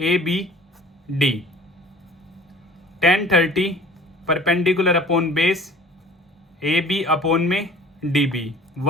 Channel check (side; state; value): both; normal; correlation 0.46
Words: B D, 1030 perpendicular upon base A B upon में D B,